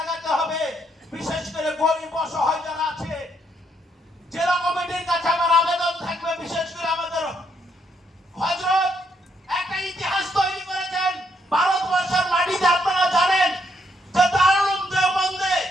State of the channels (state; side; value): normal; both; correlation 0.74